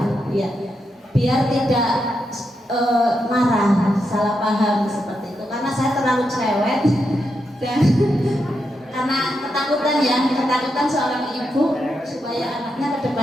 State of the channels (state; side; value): normal; both; correlation 0.84